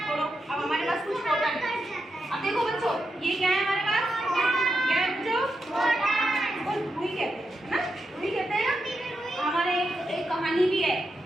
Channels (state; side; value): normal; both; correlation 0.86